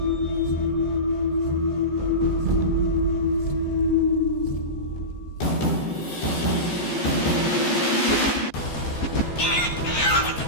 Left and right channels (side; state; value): right; late; 14 ms